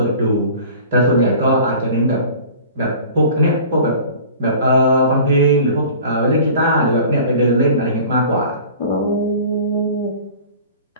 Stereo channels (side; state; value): both; inverted; correlation -0.43